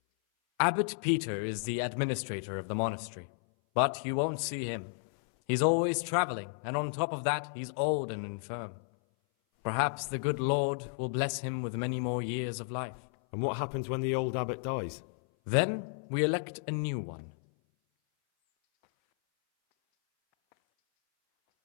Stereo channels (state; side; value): silent; right; 56 dB below the other